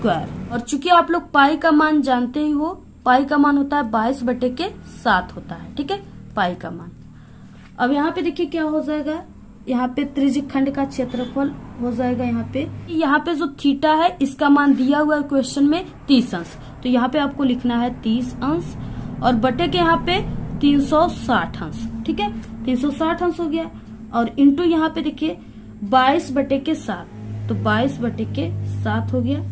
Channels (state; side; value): identical; both; correlation 1.00